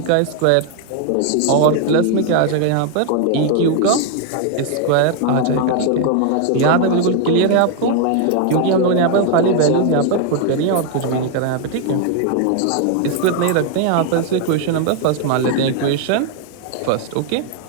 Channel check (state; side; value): different; both; correlation 0.00